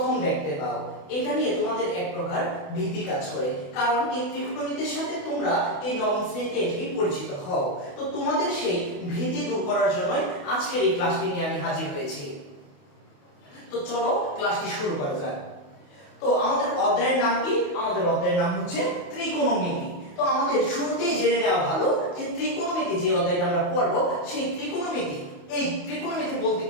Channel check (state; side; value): late; right; 28 ms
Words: দেখতে পাও। এটা নিয়ে তোমাদের এক প্রকার ভীতি কাজ করে, কারণ এই ত্রিকোণমিতির সাথে তোমরা এই নবম শ্রেণীতে এসেই পরিচিত হও। তো তোমাদের সেই ভীতি দূর করার জন্যই আজকের এই ক্লাসটি নিয়ে আমি হাজির হয়েছি। তো চলো ক্লাসটি শুরু করা যাক। তো আমাদের অধ্যায়ের নাম কি? আমাদের অধ্যায়ের নাম হচ্ছে ত্রিকোণমিতি। তো আমাদের শুরুতেই জেনে নেওয়া ভালো যে ত্রিকোণমিতি যে অধ্যায়টা আমরা পড়ব, সেই ত্রিকোণমিতি, এই ত্রিকোণমিতি বলতে